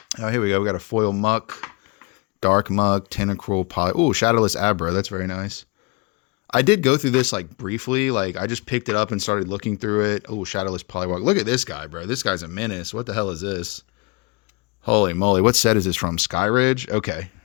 Oh, here we go. We got a foil Muck, Dark Muck, Tentacruel, oh, Shadowless Abra. That's very nice. I did go through this like briefly. Like I just picked it up and started looking through it. Oh, Shadowless Poliwag. Look at this guy, bro. This guy's a menace. What the hell is this? Holy moly. What set is this from? Skyridge? Okay.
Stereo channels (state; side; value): quieter; right; 27.0 dB